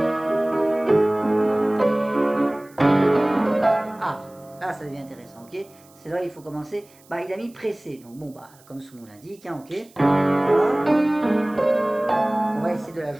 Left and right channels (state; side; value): noise; right; hiss, 28 dB below the sound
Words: Ah, là, ça devient intéressant, ok? C'est là il faut commencer. Bah, il a mis pressé. Donc, bon, bah, comme son nom l'indique, ok? Hop. On va essayer de la